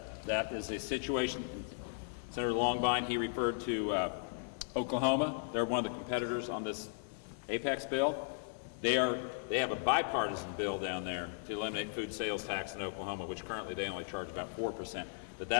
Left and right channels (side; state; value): right; silent; 53 dB below the other